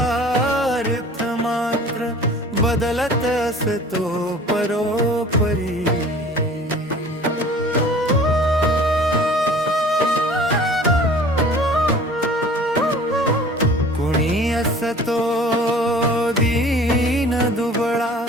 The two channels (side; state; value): both; normal; correlation 0.46